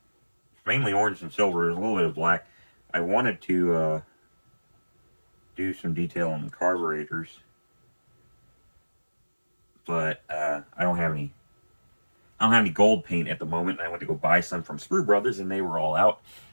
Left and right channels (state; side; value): inverted; both; correlation -1.00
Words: It's mainly orange and silver. There's a little bit of black. I wanted to do some detail on the carburetors, but I don't have any. I don't have any gold paint at the moment. I went to go buy some from Sprue Brothers, and they were all out.